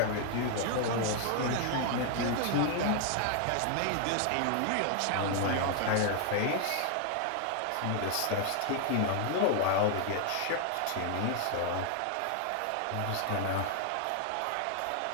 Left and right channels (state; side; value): different; both; correlation 0.00